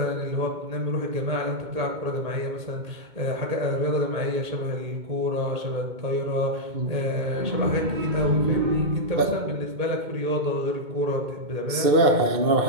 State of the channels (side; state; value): left; late; 2.2 ms